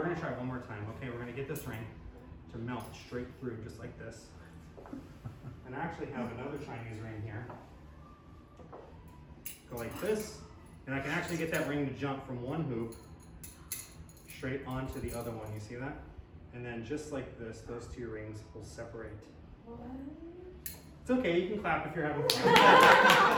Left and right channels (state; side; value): identical; both; correlation 1.00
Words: going to try one more time. Okay, we're going to get this ring to melt straight through, just like this. And I actually have another Chinese ring here. Go like this. And I can actually get that ring to jump from one hoop straight onto the other one. You see that? And then just like this, those two rings will separate. What? It's okay, you can clap if you're having fun.